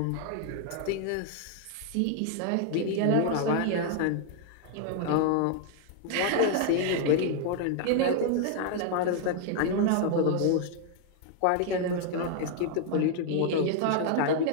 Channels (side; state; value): both; different; correlation 0.00